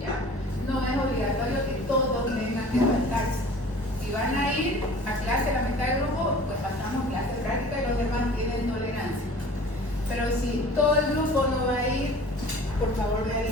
No es obligatorio que todos tengan que faltarse. Si van a ir a clase la mitad del grupo, pues pasamos clase práctica y los demás tienen tolerancia. Pero si todo el grupo no va a ir, por favor me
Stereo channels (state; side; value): normal; both; correlation 0.45